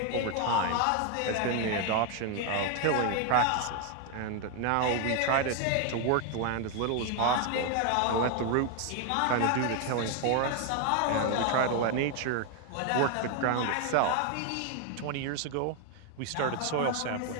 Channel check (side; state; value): both; different; correlation 0.01